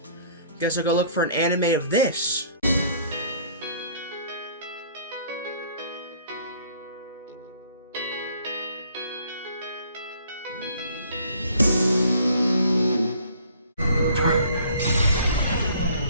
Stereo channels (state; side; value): inverted; both; correlation -0.57